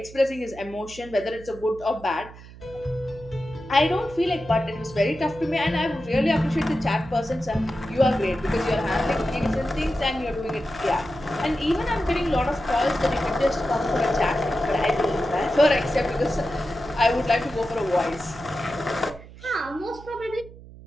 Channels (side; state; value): right; noise; hum, 18 dB below the sound